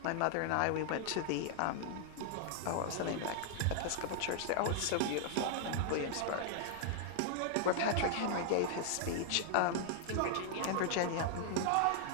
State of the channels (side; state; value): both; different; correlation 0.00